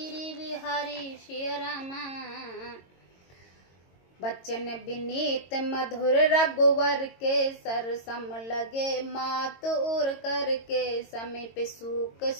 बिहारी श्री रामा। बच्चन विनीत मधुर रघुवर के, सर सम लगे मात उर करके, समीप सूक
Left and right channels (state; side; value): late; right; 22 ms